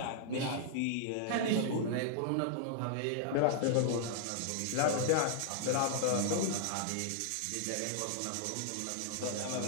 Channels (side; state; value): both; different; correlation -0.01